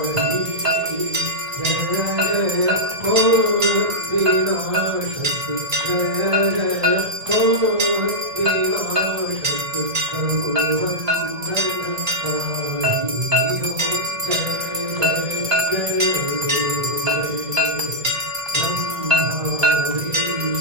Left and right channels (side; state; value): left; late; 1.8 ms